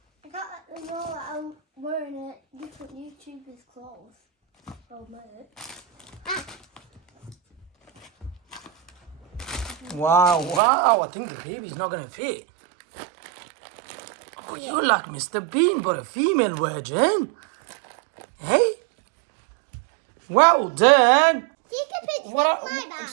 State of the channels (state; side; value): drops out; left; at 10.6 s